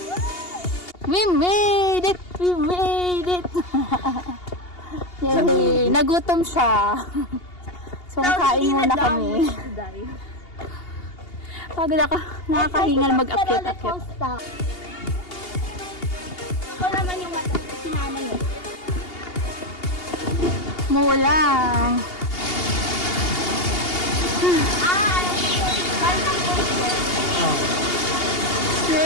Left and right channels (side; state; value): right; late; 2.8 ms